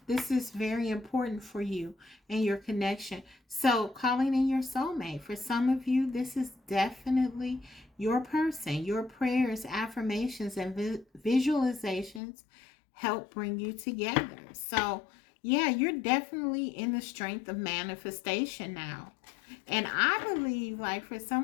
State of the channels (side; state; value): right; drops out; at 12.2 s